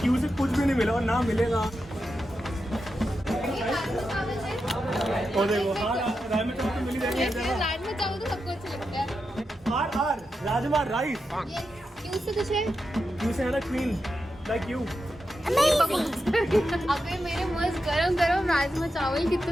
क्यू से कुछ भी नहीं मिला और ना मिलेगा। ये राजमा चावल है। और देखो, हाँ राजमा चावल तो मिल ही जाएगी हर जगह। राजमा चावल तो सबको अच्छा लगता है। R rajma rice. ये क्यू से कुछ है? क्यू से है ना क्वीन, लाइक यू। अबे मेरे मस्त गरम गरम राजमा चावल कितना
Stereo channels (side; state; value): both; normal; correlation 0.88